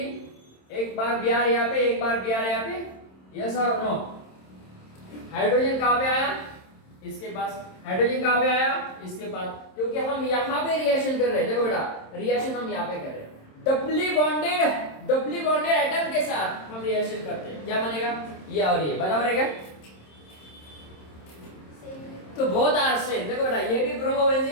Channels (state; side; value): late; right; 27 ms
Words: एक बार Br यहाँ पे, एक बार Br यहाँ पे, यस और नो। हाइड्रोजन कहाँ पे आया, इसके पास, हाइड्रोजन कहाँ पे आया, इसके पास, क्योंकि हम यहाँ पे रिएक्शन कर रहे हैं। देखो बेटा रिएक्शन हम यहाँ पे कर रहे हैं, डबली बॉन्डेड एटम के साथ हम रिएक्शन करते हैं, क्या बनेगा, ये और ये बराबर है क्या। तो बहुत आर सेम। देखो बेटा ये भी